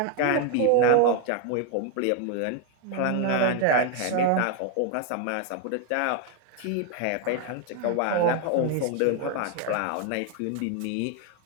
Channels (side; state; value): both; different; correlation 0.01